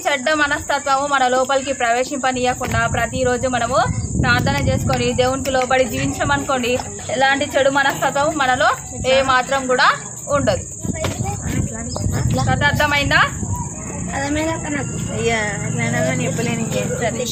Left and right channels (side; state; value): both; identical; correlation 1.00